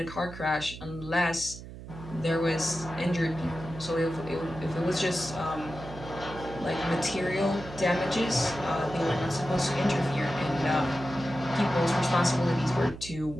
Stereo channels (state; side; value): noise; right; hum, 13 dB below the sound